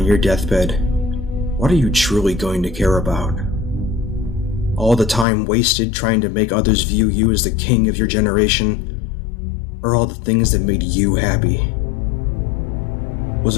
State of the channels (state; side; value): drops out; right; at 5.2 s